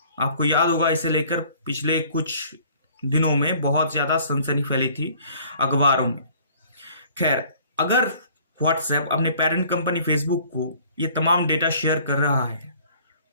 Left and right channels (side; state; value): both; inverted; correlation -0.54